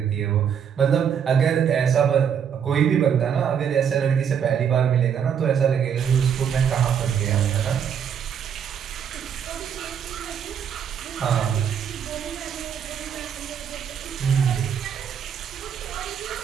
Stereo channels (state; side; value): quieter; left; 8.0 dB